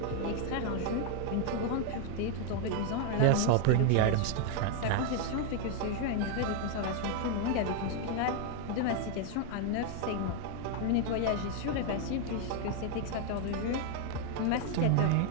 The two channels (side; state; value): both; different; correlation 0.01